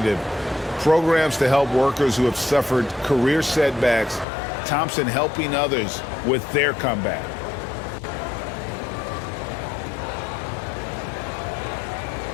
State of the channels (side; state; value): right; drops out; at 4.2 s